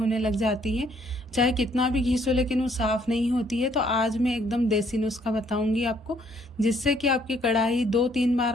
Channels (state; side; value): normal; both; correlation 0.66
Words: लग जाती है। चाहे कितना भी घिसो लेकिन वो साफ़ नहीं होती है। तो आज मैं एकदम देसी नुस्खा बताऊंगी आपको, जिससे कि आपकी कढ़ाई 2-3 बार